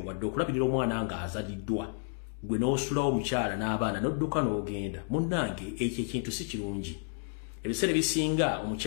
wadde okulabirira omwana nga azaliddwa. Gwe n'osulawo omukyala n'abaana n'odduka n'ogenda. Munnange ekyo ekintu si kirungi. Ebiseera bisinga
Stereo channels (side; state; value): right; silent; 57 dB below the other